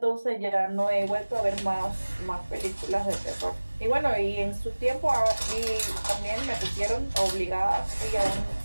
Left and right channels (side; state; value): both; inverted; correlation -1.00